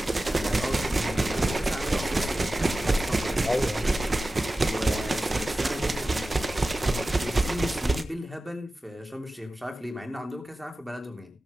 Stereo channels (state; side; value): normal; both; correlation 0.95